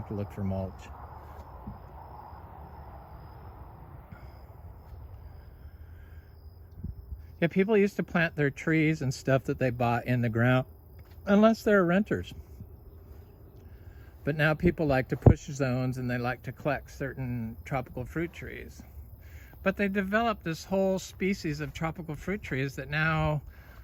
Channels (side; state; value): both; identical; correlation 1.00